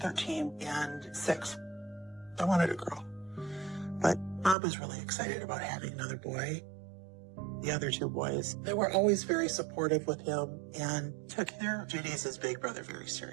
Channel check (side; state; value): left; drops out; at 4.5 s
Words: 13 and 6. I wanted a girl. But Bob was really excited about having another boy. The other 2 boys, they were always very supportive with him and took their duties as big brother very